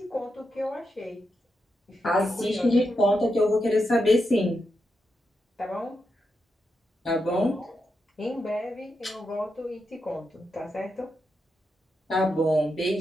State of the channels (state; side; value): normal; both; correlation 0.86